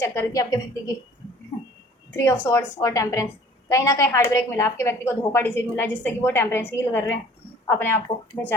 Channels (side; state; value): both; normal; correlation 0.51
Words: कर रही थी आपके व्यक्ति की 3 ऑफ स्वॉर्ड्स और टेम्परेंस। कहीं ना कहीं हार्ट ब्रेक मिला, आपके व्यक्ति को धोखा डिसीड मिला, जिससे कि वो टेम्परेंस हील कर रहे हैं अपने आप को,